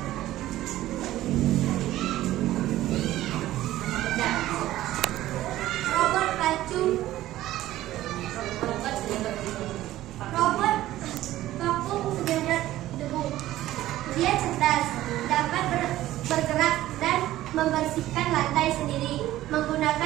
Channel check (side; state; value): left; quieter; 14.9 dB